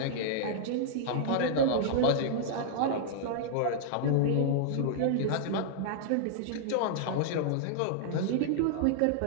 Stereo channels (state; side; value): different; both; correlation -0.01